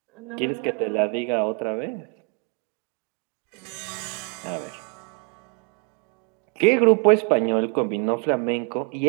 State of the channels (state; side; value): quieter; left; 33.5 dB